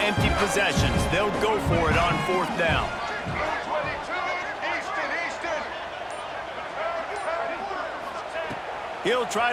empty possessions. They'll go for it on 4th down. He'll try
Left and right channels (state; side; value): identical; both; correlation 1.00